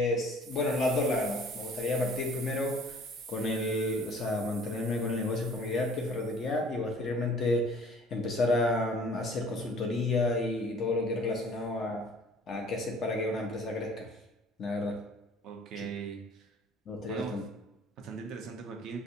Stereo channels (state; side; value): normal; both; correlation 0.52